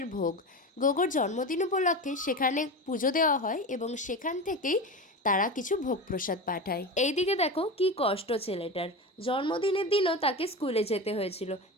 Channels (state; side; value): normal; both; correlation 0.24